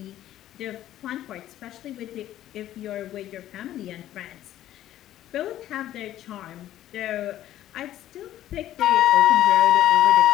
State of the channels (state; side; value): quieter; right; 12.9 dB